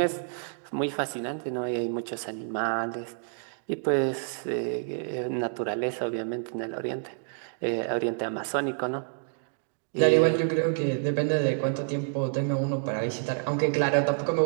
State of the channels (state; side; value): silent; left; digital silence